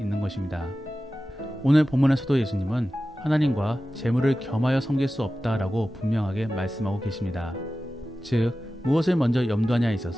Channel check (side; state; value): both; normal; correlation 0.94